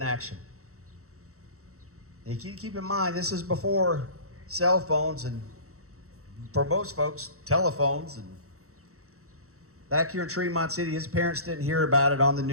action. And you keep in mind, this is before cell phones and, for most folks, telephones. And back here in Tremont City, his parents didn't hear about it on the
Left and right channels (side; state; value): left; late; 0.64 ms